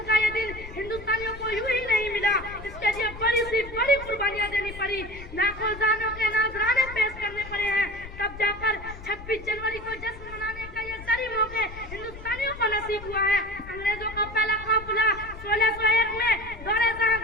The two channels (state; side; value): noise; left; rumble, 14 dB below the sound